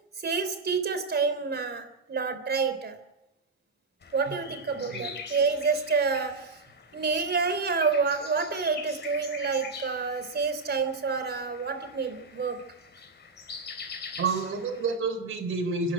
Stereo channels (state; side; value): quieter; left; 4.2 dB